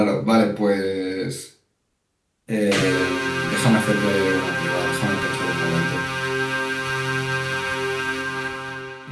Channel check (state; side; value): identical; both; correlation 1.00